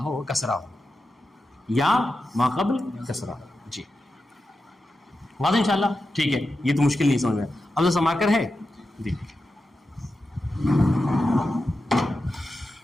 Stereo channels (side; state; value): both; normal; correlation 0.90